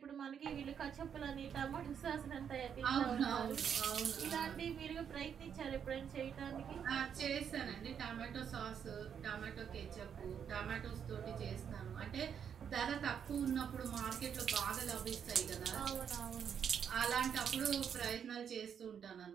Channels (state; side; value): quieter; left; 7.9 dB